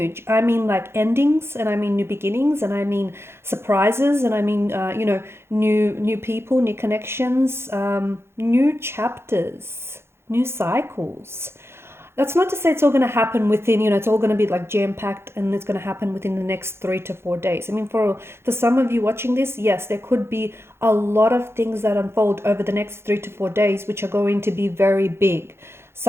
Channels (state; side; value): late; left; 0.12 ms